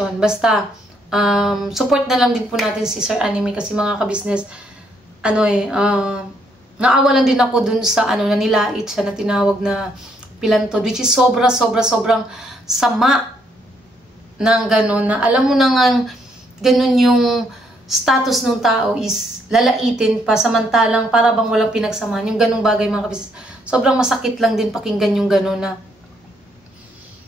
Basta, support na lang din po natin si Sir Anime kasi mga ka-business, naawa lang din ako dun sa na nilait siya na tinawag na pilantod, which is sobrang sama ng gano'n, na alam mo na nga gano'n yung status ng tao is lalaitin pa samantalang para bang walang pinagsamaan. Yung gano'ng bagay mga ka-business. Sobrang masakit lang din pakinggan yung gano'n na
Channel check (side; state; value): both; normal; correlation 0.72